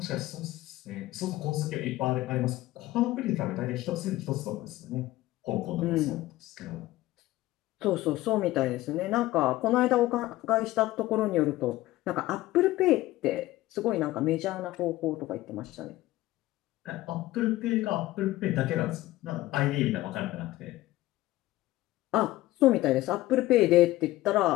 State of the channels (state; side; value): quieter; right; 16.9 dB